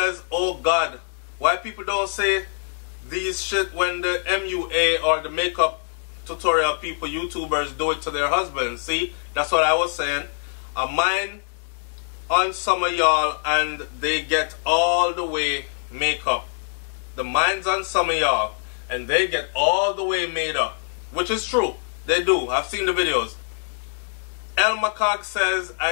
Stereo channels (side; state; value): right; silent; digital silence